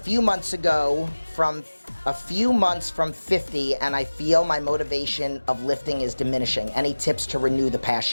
months from 50, and I feel my motivation of lifting is diminishing. Any tips to renew the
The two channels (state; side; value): inverted; both; correlation -1.00